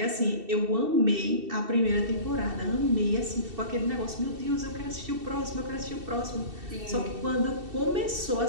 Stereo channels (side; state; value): left; late; 2.7 ms